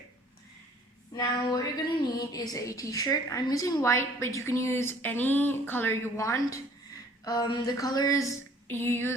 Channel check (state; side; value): normal; both; correlation 0.55